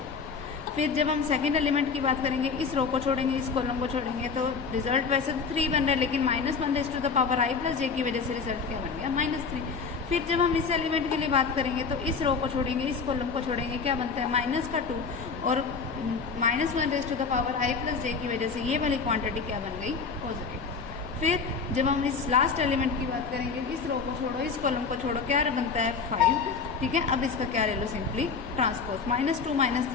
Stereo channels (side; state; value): right; quieter; 5.2 dB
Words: फिर जब हम सेकंड एलिमेंट की बात करेंगे, इस रो को छोड़ेंगे, इस कॉलम को छोड़ेंगे, तो रिजल्ट वैसे तो 3 बन रहा है, लेकिन -1 raise to the power i plus j की वजह से रिजल्ट क्या बन गया -3। फिर जब हम इस एलिमेंट के लिए बात करेंगे तो इस रो को छोड़ेंगे, इस कॉलम को छोड़ेंगे, क्या बनता है माइनस का 2 और -1 raise to the power i plus j की वजह से ये वाली क्वांटिटी क्या बन गई पॉजिटिव। फिर जब हम इस लास्ट एलिमेंट की बात करेंगे, इस रो को छोड़ो, इस कॉलम को छोड़ो, क्या बनता है 5, ठीक है। अब इसका क्या ले लो सिंपली ट्रांसपोज, -2